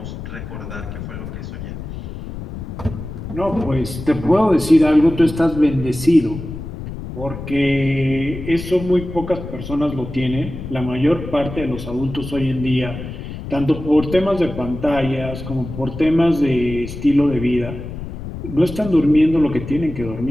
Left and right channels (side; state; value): left; noise; rumble, 9 dB below the sound